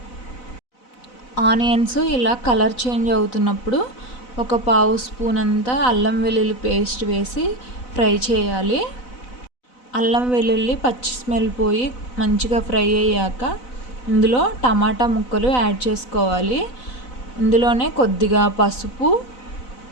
ఆనియన్స్ ఇలా కలర్ చేంజ్ అవుతున్నప్పుడు ఒక పావు స్పూన్ అంతా అల్లం వెల్లుల్లి పేస్ట్ వేసి ఫ్రై చేయాలి. అల్లం వెల్లుల్లి పచ్చి స్మెల్ పోయి మంచిగా ఫ్రై అయ్యాక ఇందులో టమాటా ముక్కలు యాడ్ చేసుకోవాలి. ఇందులోనే కొద్దిగా పసుపు,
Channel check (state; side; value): late; right; 4.0 ms